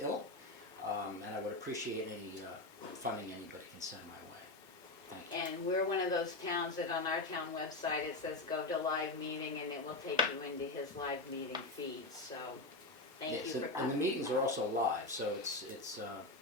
and I would appreciate any funding anybody can send my way. Thank you. And we're one of those towns that on our town website, it says go to live meeting and it will take you into his live meeting feed, so thank you Yes, for, and the meetings are also live, so it's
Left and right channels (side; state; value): right; quieter; 3.0 dB